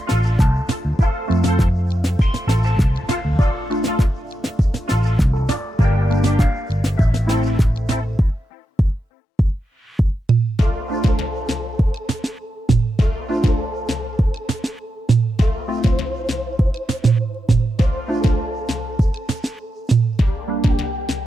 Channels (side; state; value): both; normal; correlation 0.88